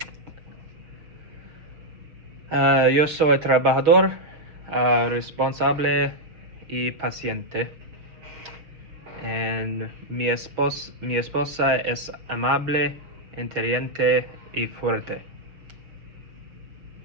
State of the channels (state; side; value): late; left; 6.3 ms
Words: Yo soy trabajador, responsable y paciente. And mi esposa es amable, inteligente y fuerte.